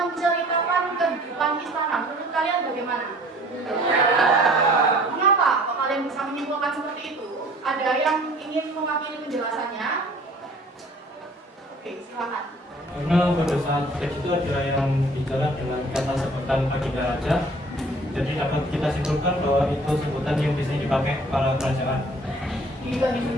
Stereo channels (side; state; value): both; normal; correlation 0.51